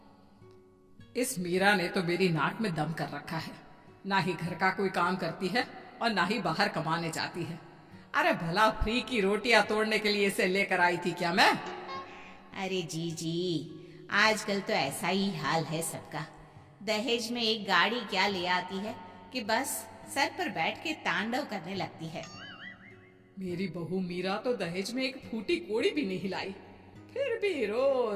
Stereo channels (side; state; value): both; identical; correlation 1.00